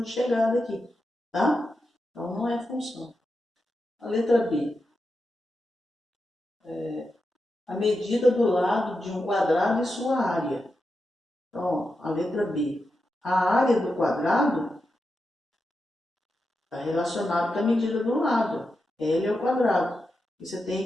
de chegada aqui, tá? Então, não é função. A letra B. A medida do lado de um quadrado e sua área. Então, a letra B. A área do quadrado está relacionada com a medida do lado. L é o quadrado. E você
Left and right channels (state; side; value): normal; both; correlation 0.88